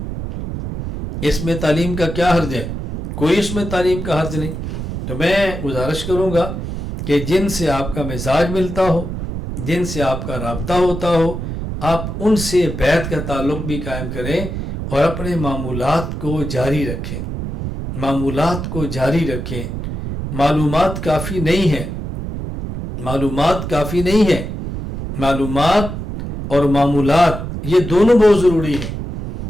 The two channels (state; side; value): noise; right; rumble, 6 dB below the sound